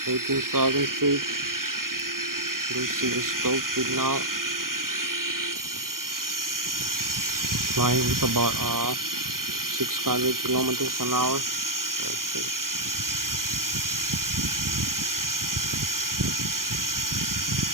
18,000 feet. You'll see the stall speed now. Flying with about 600 kilometers an hour. Let's see.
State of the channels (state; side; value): late; left; 0.91 ms